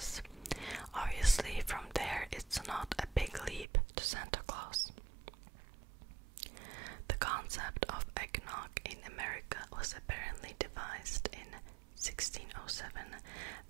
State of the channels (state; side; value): drops out; left; at 3.7 s